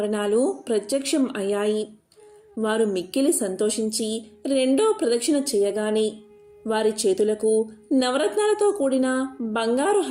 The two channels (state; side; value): identical; both; correlation 1.00